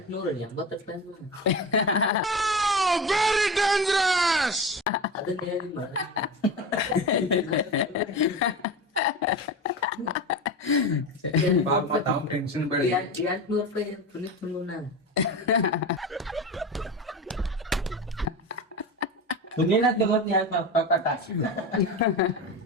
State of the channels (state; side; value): normal; both; correlation 0.26